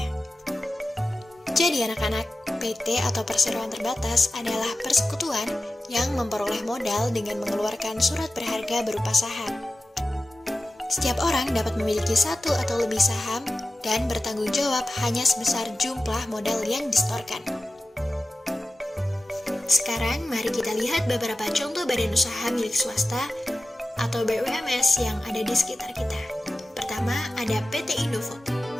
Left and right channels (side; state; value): both; normal; correlation 0.94